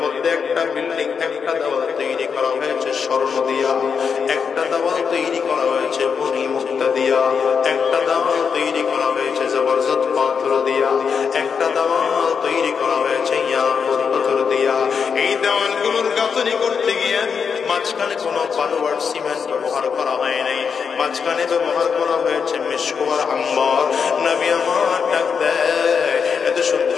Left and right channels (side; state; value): right; quieter; 6.3 dB